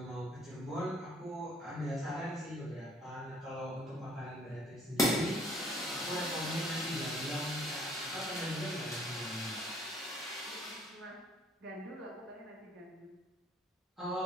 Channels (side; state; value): both; normal; correlation 0.59